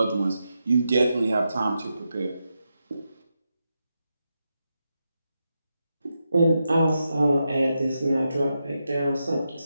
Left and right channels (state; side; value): inverted; both; correlation -0.87